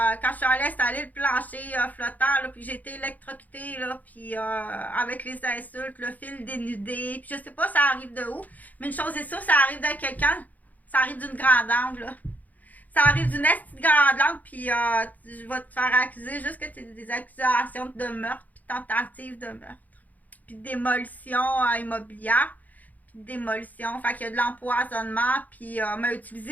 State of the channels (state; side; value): late; right; 0.080 ms